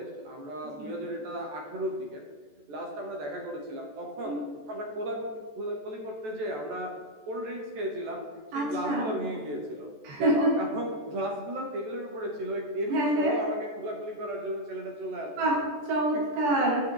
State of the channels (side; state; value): left; late; 14 ms